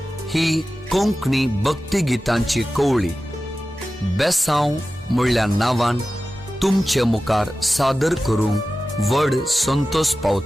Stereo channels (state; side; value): normal; both; correlation 0.94